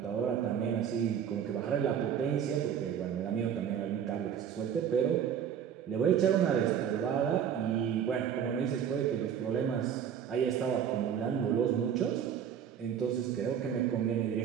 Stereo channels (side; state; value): left; quieter; 8.6 dB